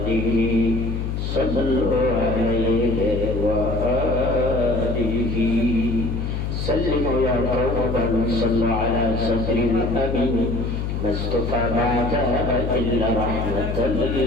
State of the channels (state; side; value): noise; left; hum, 2 dB below the sound